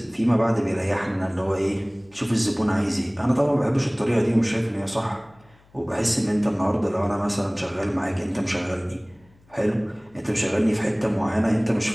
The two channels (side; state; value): left; noise; hum, 30 dB below the sound